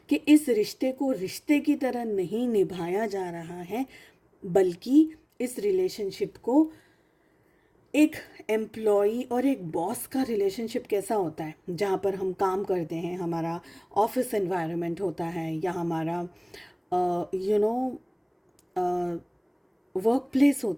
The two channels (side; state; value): both; identical; correlation 1.00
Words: कि इस रिश्ते को रिश्ते की तरह नहीं निभाया जा रहा है, बल्कि इस रिलेशनशिप को एक एम्प्लॉई और एक बॉस का रिलेशनशिप कैसा होता है, जहाँ पर हम काम करते हैं, हमारा ऑफिस एनवायरनमेंट होता है, या हमारा वर्क प्लेस